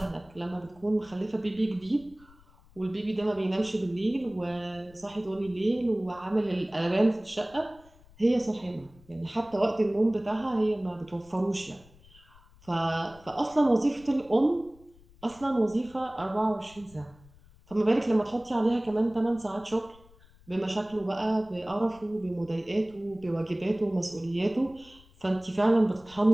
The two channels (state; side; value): noise; left; rumble, 26 dB below the sound